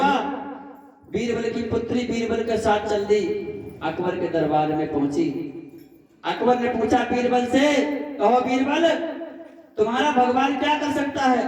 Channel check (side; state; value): both; identical; correlation 1.00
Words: बीरबल की पुत्री बीरबल के साथ चल दी, अकबर के दरबार में पहुंची। अकबर ने पूछा बीरबल से, कहो बीरबल तुम्हारा भगवान क्या कर सकता